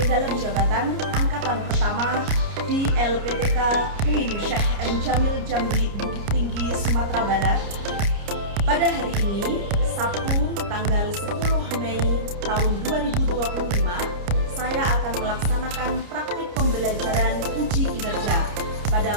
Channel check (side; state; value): left; late; 29 ms